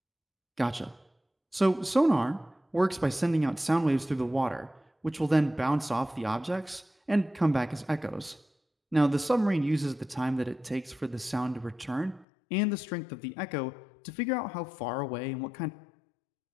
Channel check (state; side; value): drops out; right; at 12.2 s